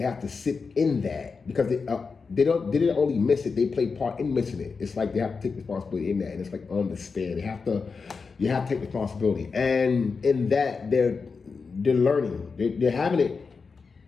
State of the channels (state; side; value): quieter; right; 4.9 dB